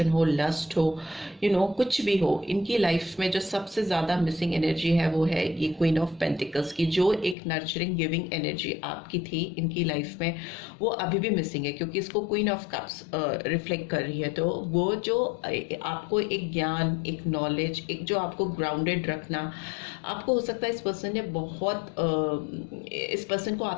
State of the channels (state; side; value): drops out; right; at 7.4 s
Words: हो, लस्ट हो, कुछ भी हो, इनकी लाइफ में जो सबसे ज़्यादा मिसिंग एनर्जी है वो है ये क्वीन ऑफ पेंटिकल्स की। जो एक नर्चरिंग गिविंग एनर्जी आपकी थी इनकी लाइफ में, वो अभी भी मिसिंग है, क्योंकि इसको क्वीन ऑफ कप्स रिफ्लेक्ट कर रही है। तो वो जो आपको एक ज्ञान, एक नॉलेज, एक जो आपको ग्राउंडेड रखना, आपको हो सकता है इस पर्सन ने बहुत इस पर्सन को